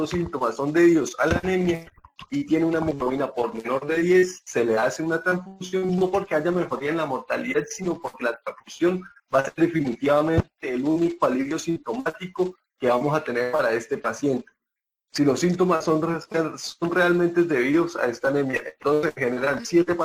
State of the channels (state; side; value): identical; both; correlation 1.00